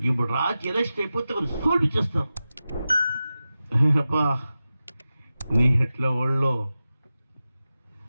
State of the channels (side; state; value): both; inverted; correlation -0.94